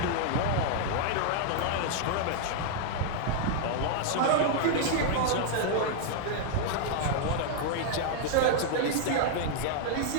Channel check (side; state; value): both; different; correlation -0.01